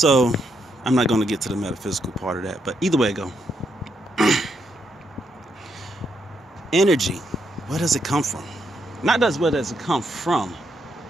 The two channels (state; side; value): normal; both; correlation 0.78